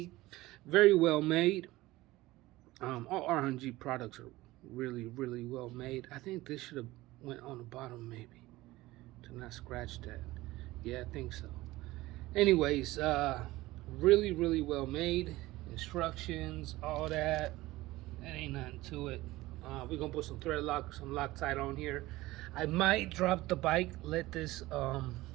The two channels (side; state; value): left; quieter; 18.5 dB